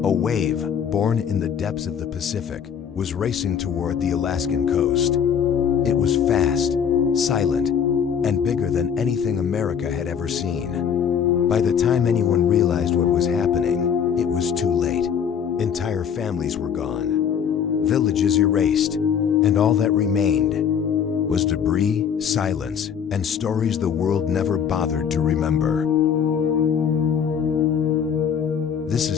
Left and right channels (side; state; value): right; quieter; 7.7 dB